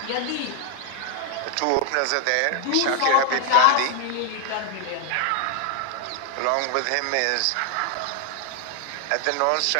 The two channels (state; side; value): different; both; correlation 0.00